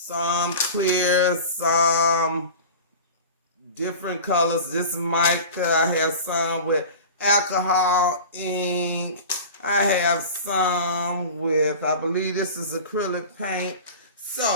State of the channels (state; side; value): inverted; both; correlation -0.35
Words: clear, some different colors. This is mica. I have some with alcohol ink. I have some with, I believe this is acrylic paint.